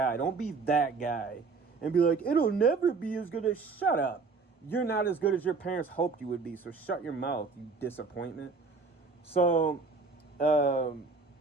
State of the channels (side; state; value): left; quieter; 4.5 dB